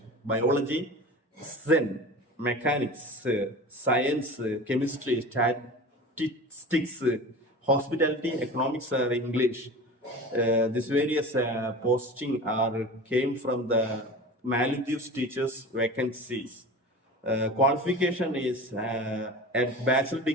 biology, Zen, mechanics, science, chemistry, statistics, hospitality, economics, English. These various posting are came from the Maldives teachers vacancies. Qualification is a bachelor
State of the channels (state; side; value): normal; both; correlation 0.34